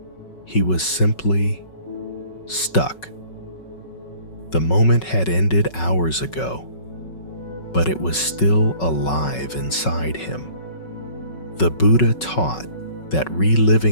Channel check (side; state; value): right; late; 5.4 ms